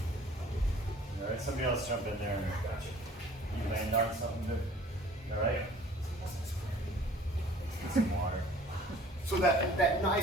right, somebody else jump in there. You land on something good. All right? Get some water. So that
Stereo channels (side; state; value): both; normal; correlation 0.51